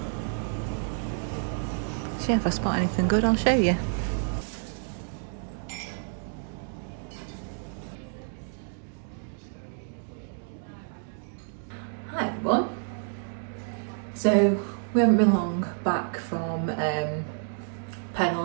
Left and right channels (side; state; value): left; silent; 59 dB below the other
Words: So yeah, if I spot anything good, I'll show you. haven't been long back from